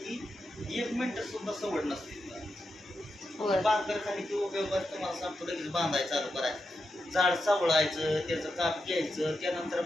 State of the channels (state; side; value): normal; both; correlation 0.87